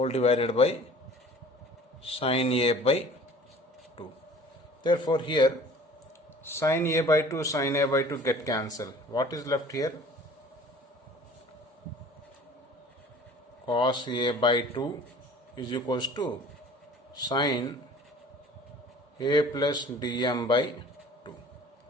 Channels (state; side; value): normal; both; correlation 0.47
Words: divided by sine A by 2. Therefore here sine A by 2 sine A by 2 get cancelled. What is left here? Cos A by 2 is equals to sine A plus dm by 2.